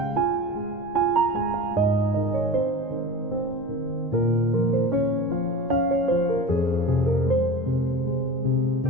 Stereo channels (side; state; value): both; normal; correlation 0.32